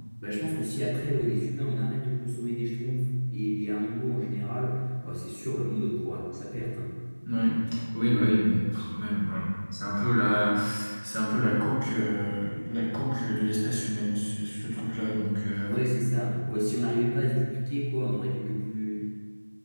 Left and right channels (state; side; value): inverted; both; correlation -1.00